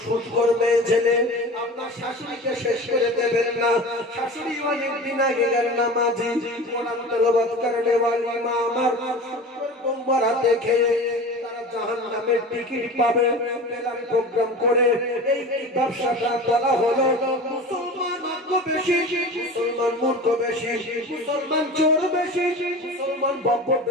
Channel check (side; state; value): both; normal; correlation 0.34